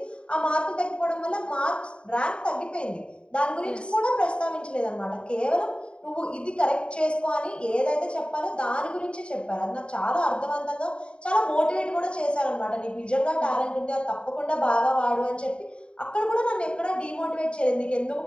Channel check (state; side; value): late; right; 0.054 ms